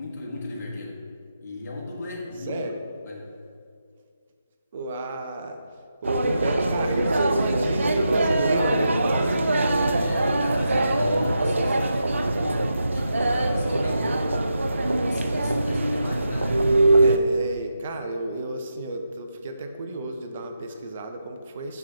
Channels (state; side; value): inverted; both; correlation -0.85